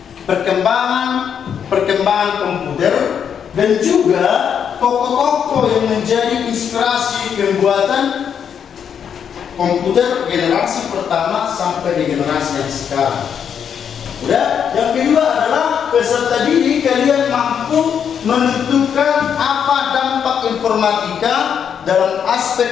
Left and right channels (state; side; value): quieter; right; 7.9 dB